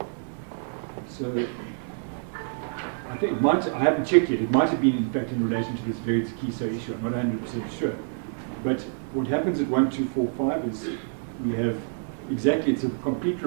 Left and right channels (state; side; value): silent; left; 60 dB below the other